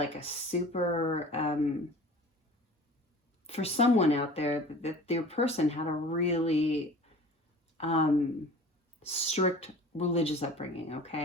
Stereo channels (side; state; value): both; normal; correlation 0.42